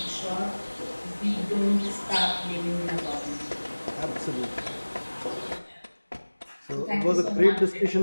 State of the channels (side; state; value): both; inverted; correlation -1.00